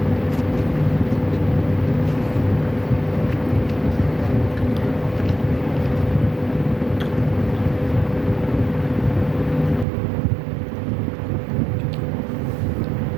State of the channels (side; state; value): left; drops out; at 9.9 s